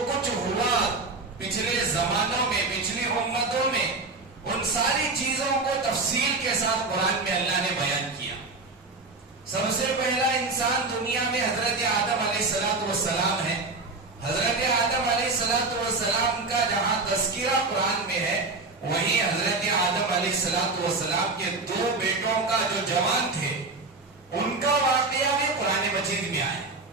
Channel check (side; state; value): left; quieter; 3.5 dB